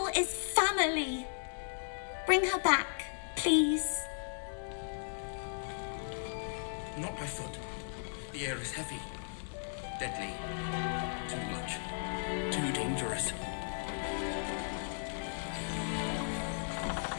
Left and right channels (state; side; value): silent; right; digital silence